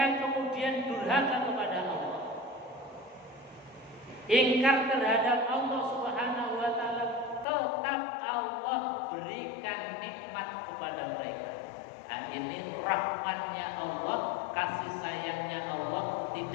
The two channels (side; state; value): right; drops out; at 7.5 s